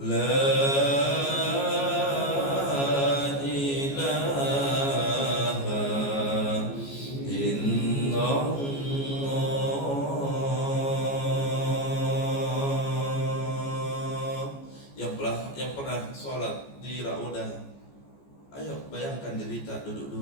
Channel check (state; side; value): late; right; 14 ms